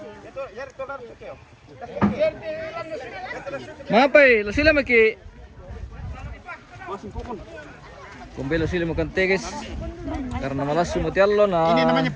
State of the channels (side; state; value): both; identical; correlation 1.00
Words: Mapai, lo sila maki. Kumbelo sila makan teges karena malas sumuti allo na. Ini namanya